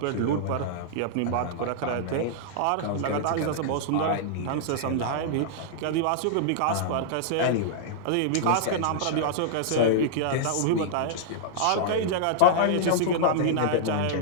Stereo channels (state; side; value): different; both; correlation -0.02